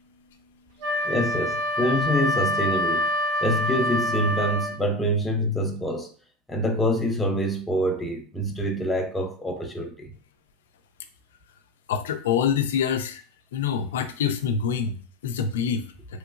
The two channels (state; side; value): normal; both; correlation 0.25